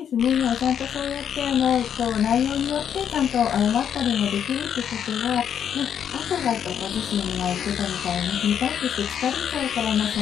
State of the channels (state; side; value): quieter; right; 8.7 dB